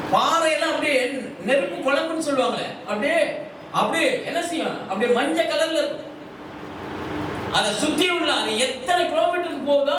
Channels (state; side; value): identical; both; correlation 1.00